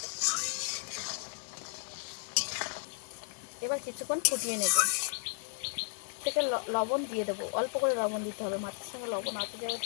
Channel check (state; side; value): silent; right; digital silence